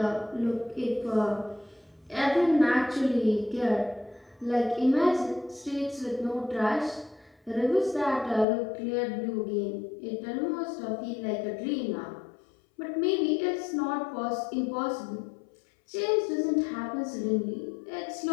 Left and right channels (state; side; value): drops out; right; at 8.5 s